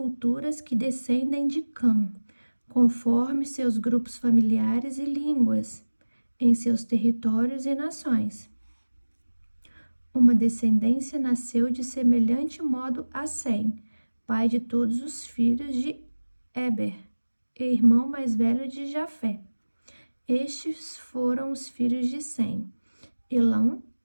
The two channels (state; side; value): inverted; both; correlation -1.00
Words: que descendem de Cã, conforme seus grupos familiares e línguas, em seus territórios e nações. Uma descendência nasceu de semelhante modo a Sem, pai de todos os filhos de Eber, e irmão mais velho de Jafé. Estes foram os filhos de Sem: Elão,